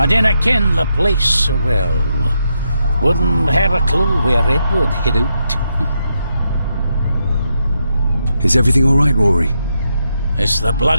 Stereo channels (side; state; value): both; inverted; correlation -0.82